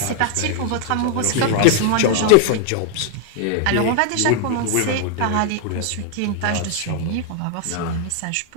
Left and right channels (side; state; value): both; different; correlation 0.00